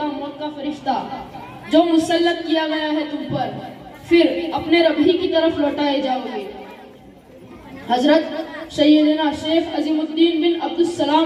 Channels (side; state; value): both; identical; correlation 1.00